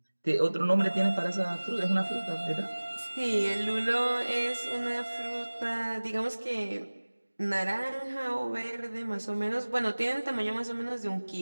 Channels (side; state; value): both; inverted; correlation -1.00